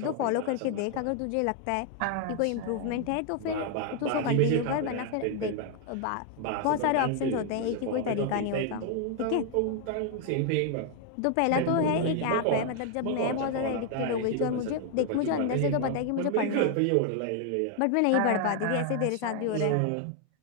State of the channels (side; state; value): both; different; correlation 0.00